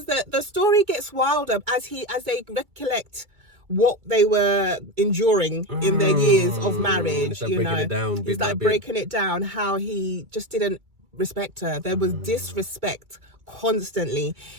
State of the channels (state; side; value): late; left; 2.3 ms